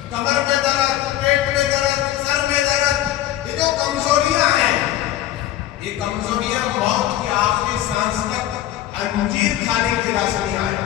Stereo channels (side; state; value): right; quieter; 13.2 dB